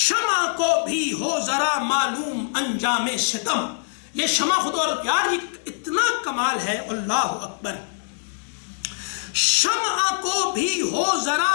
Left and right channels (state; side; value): silent; right; digital silence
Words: کو بھی ہو ذرا معلوم انجام ستم۔ یہ شمع خود اور پیار اتنا کمال ہے، اللہ اکبر، شمع کو بھی ہو